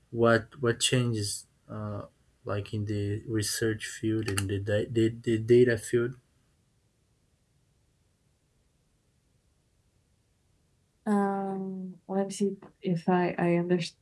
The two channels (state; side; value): identical; both; correlation 1.00